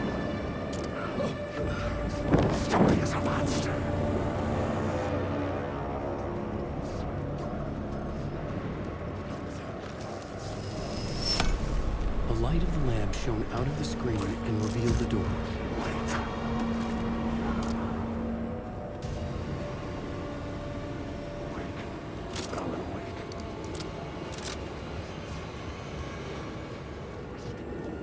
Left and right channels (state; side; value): identical; both; correlation 1.00